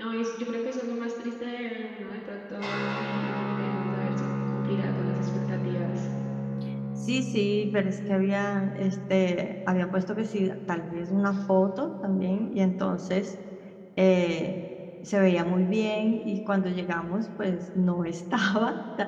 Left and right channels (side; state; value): both; identical; correlation 1.00